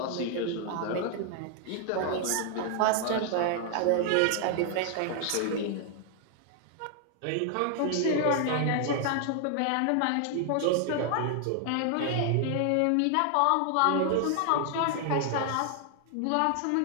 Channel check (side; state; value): both; different; correlation 0.00